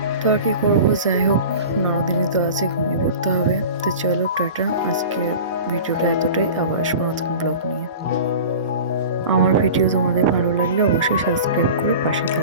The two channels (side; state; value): both; inverted; correlation -0.36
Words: তো আর কি করবো, যাই হোক, নরদিনই তো আছে, ঘুমিয়ে পড়তে হবে। তো চলো টাটা, আজকের ভিডিওটা এতটাই, আবার আসবো নতুন ব্লগ নিয়ে। আমার ভিডিও তোমাদের ভালো লাগলে অবশ্যই সাবস্ক্রাইব করে পাশে